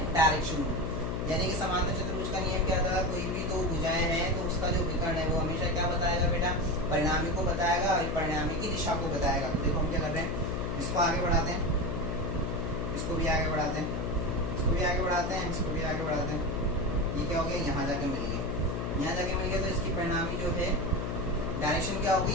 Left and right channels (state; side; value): noise; left; hum, 2 dB below the sound